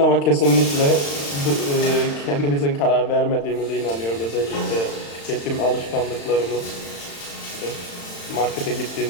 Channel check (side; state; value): right; late; 35 ms